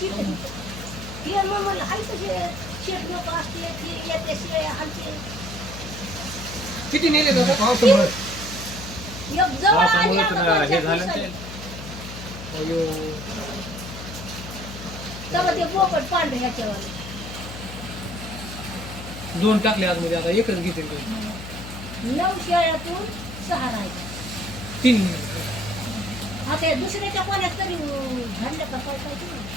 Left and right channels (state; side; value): noise; left; hum, 11 dB below the sound